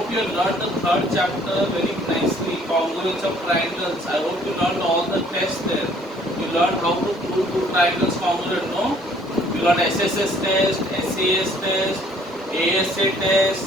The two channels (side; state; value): both; normal; correlation 0.59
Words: you have learned the third chapter very nicely. Congruence of triangles. I hope you learned all the tests there. You learned how to prove two triangles congruent. No. You learned SSS test, SAS test, ASA